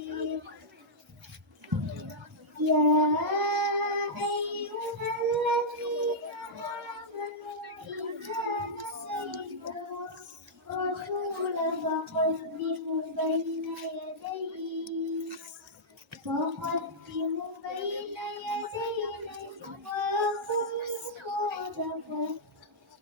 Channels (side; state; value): both; normal; correlation -0.11